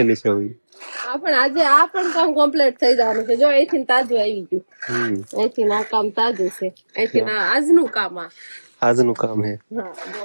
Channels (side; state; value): both; inverted; correlation -1.00